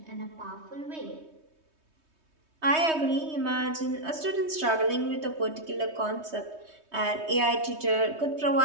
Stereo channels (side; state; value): left; late; 3.2 ms